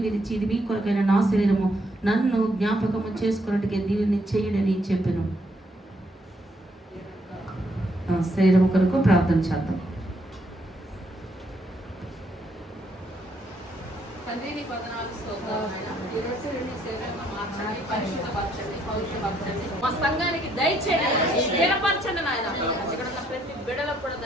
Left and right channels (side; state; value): both; normal; correlation 0.72